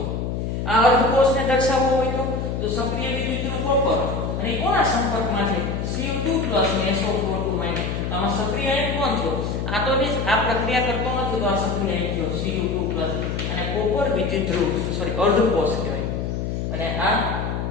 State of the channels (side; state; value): left; noise; hum, 2 dB below the sound